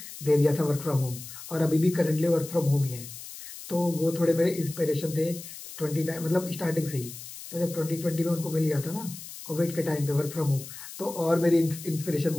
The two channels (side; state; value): left; noise; hiss, 13 dB below the sound